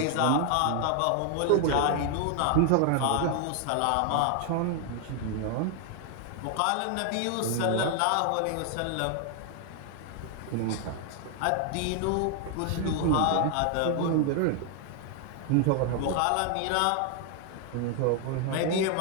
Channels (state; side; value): different; both; correlation 0.00